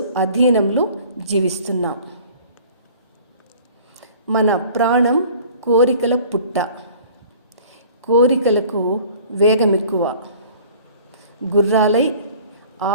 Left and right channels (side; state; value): both; inverted; correlation -0.48